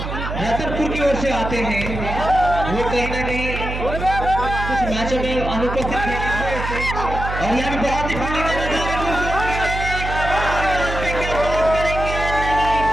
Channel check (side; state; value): right; noise; hum, 5 dB below the sound